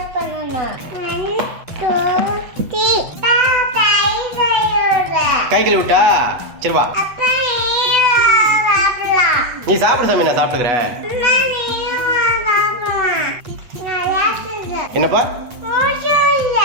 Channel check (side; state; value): left; late; 8.2 ms